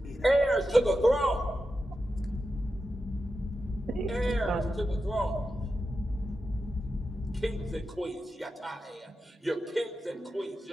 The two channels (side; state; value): both; normal; correlation 0.90